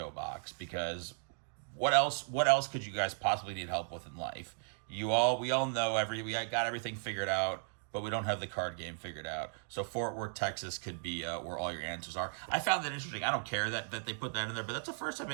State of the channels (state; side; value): silent; left; digital silence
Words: box, because what else could you guys possibly need help with in life? We all know we got everything figured out, but we don't have the card game figured out. So Fort Worth, Texas could be where all your answers are. I found that interesting. I don't care that they put that in there, but that's the first time